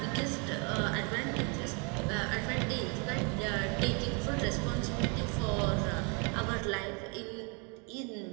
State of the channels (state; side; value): quieter; left; 34.2 dB